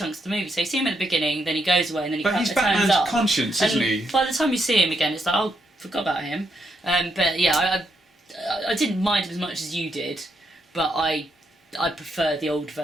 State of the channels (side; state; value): both; normal; correlation 0.78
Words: of the movie. So you see him at the beginning, then he goes away, and then he But he's turns Batman's up. conscience, isn't he? By the time you see him again, it's like, oh, forgot about him. But yeah, I didn't mind him as much as you did, but I prefer the old